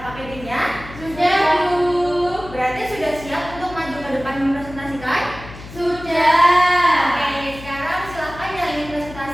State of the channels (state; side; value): noise; left; hum, 15 dB below the sound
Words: Sudah, Bu. Berarti sudah siap untuk maju ke depan mempresentasikan? Sudah. Oke, sekarang silakan yang ingin